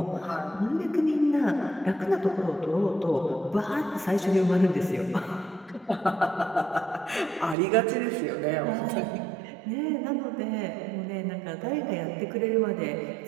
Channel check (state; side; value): drops out; left; at 7.6 s